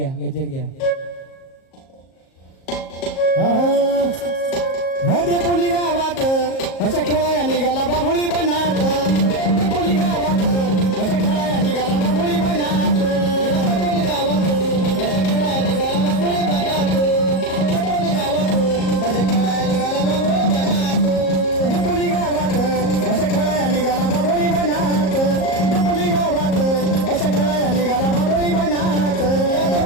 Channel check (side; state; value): right; late; 37 ms